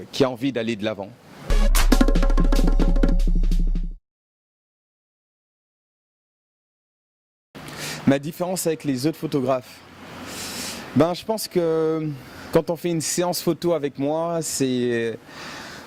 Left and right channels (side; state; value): both; identical; correlation 1.00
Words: qui a envie d'aller de l'avant. Ma différence avec les autres photographes, je pense que quand on fait une séance photo avec moi, c'est